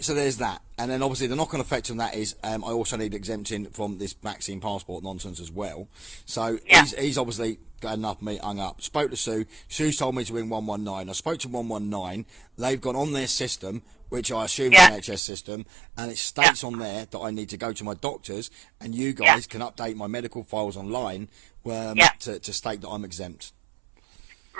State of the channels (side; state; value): left; drops out; at 15.2 s